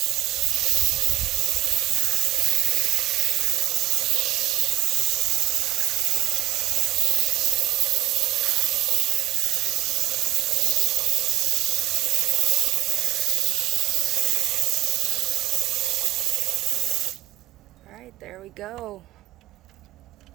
Alright, there we go.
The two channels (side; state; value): left; quieter; 15.7 dB